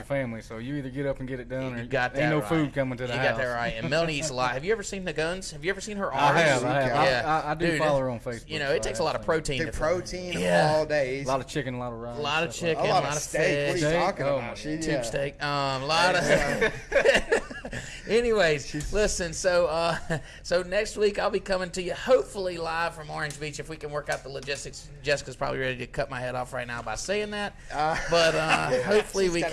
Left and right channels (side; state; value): both; identical; correlation 1.00